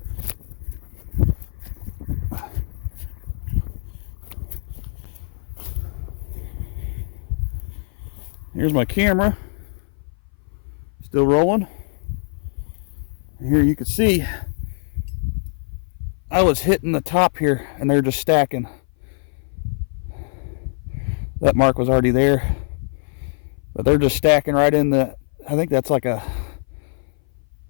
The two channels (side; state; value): right; silent; 58 dB below the other